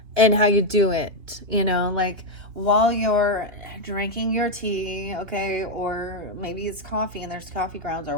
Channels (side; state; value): left; late; 3.2 ms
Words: And how you do it, like while you're drinking your tea, okay, or maybe it's coffee and there's coffee grounds or